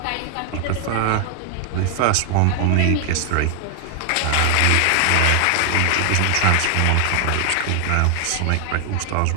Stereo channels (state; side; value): different; both; correlation 0.00